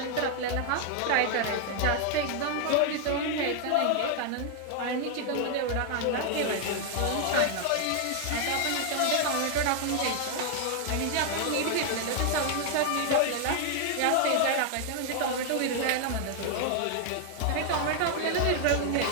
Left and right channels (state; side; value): different; both; correlation 0.00